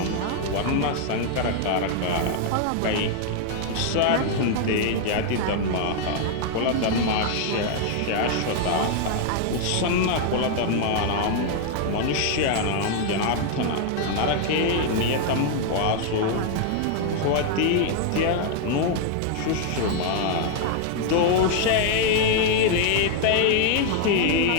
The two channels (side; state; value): both; different; correlation 0.00